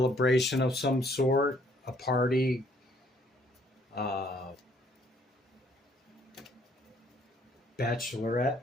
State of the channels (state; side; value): normal; both; correlation 0.64